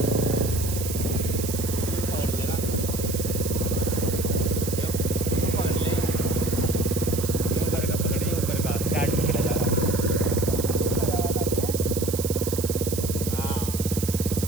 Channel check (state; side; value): noise; right; hiss, 7 dB below the sound